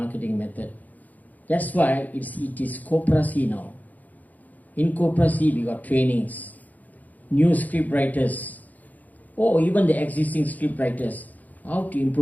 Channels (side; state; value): right; late; 0.080 ms